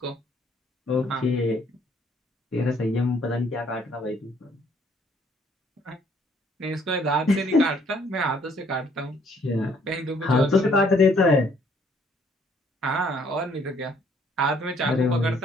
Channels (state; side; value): normal; both; correlation 0.64